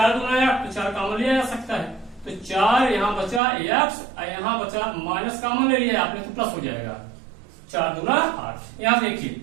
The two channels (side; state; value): left; drops out; at 3.4 s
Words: दूना 8 तो 4 कॉमन लिया जा सकता है, तो 4 यहाँ बचा x और यहाँ बचा माइनस कॉमन ले लिया आपने तो प्लस हो जाएगा, 4 दूना 8। यहाँ देखिए